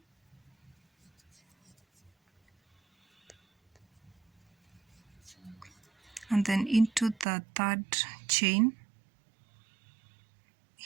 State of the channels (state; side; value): drops out; left; at 7.2 s